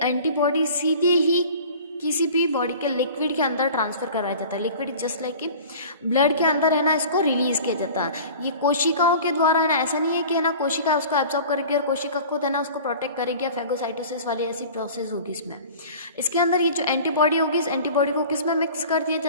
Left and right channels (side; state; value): both; inverted; correlation -0.42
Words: एंटीबॉडी सीधे ही किसी भी बॉडी के लिक्विड के अंदर ट्रांसफ़र करवाया जाता है। लिक्विड जस्ट लाइक कि ब्लड के अंदर है ना, इसको रिलीज़ किया जाता है। ये कोशिकाओं के द्वारा है ना, ऐसा नहीं है कि है ना कोशिका उसको एब्जॉर्ब करेगी और कोशिका खुद है ना उसको प्रोटेक्ट करेगी, या फैगोसाइटोसिस वाली ऐसी प्रोसेस होगी इसमें। इसके अंदर ये जो एंटीबॉडी होगी, इस एंटीबॉडी को किस में मिक्स कर दिया